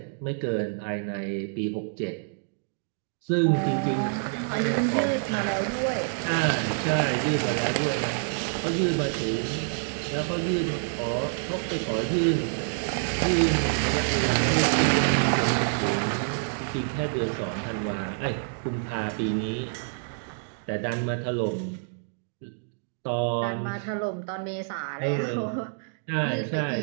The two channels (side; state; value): left; silent; digital silence